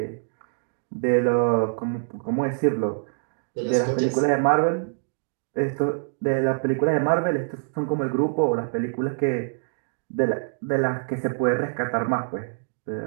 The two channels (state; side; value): silent; left; digital silence